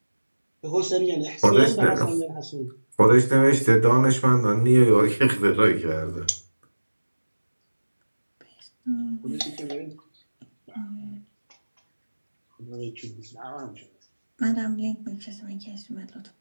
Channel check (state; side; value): inverted; both; correlation -1.00